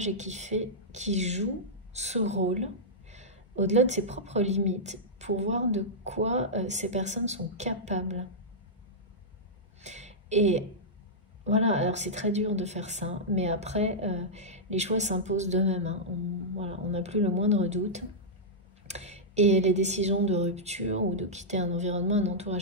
et qui joue ce rôle, au-delà de ses propres limites, pour voir de quoi ces personnes sont capables. Et voilà, alors c'est très dur de faire ça, mais après, les choix s'imposent d'eux-mêmes. Hein. On n'a plus le moindre doute. Et les décisions de rupture ou de quitter un environnement, un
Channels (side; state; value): both; normal; correlation -0.10